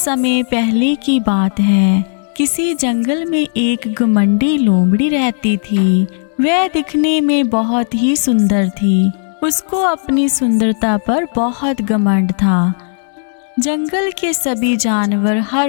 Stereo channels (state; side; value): silent; right; digital silence